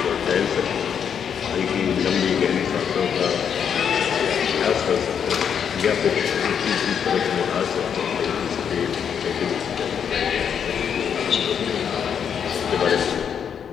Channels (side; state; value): right; quieter; 7.8 dB